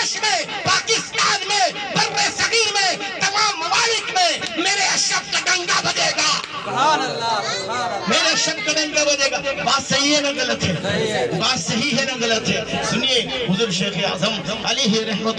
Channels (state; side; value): identical; both; correlation 1.00